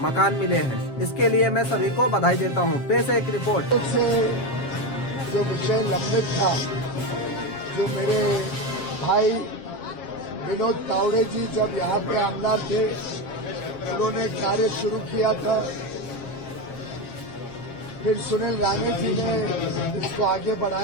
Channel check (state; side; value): late; right; 7.4 ms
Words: मकान मिले हैं। इसके लिए मैं सभी को बधाई देता हूँ। पेश है एक रिपोर्ट। जो विषय लंबित था, जो मेरे भाई विनोद तावड़े जी जब यहाँ पे आमदार थे, उन्होंने कार्य शुरू किया था। फिर सुनील राणे जी ने इसको आगे